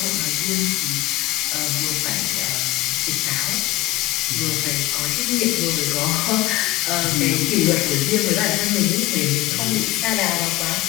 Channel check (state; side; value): quieter; right; 17.0 dB